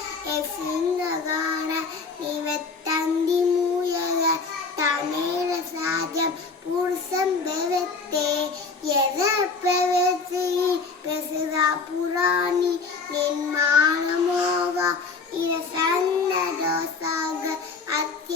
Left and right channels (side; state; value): right; quieter; 4.6 dB